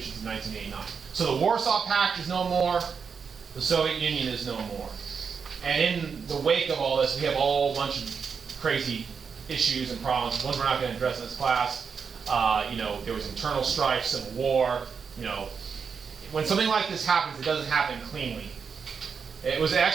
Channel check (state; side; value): quieter; left; 6.1 dB